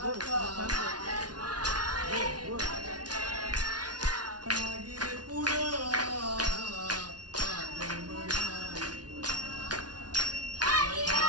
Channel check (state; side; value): late; left; 0.69 ms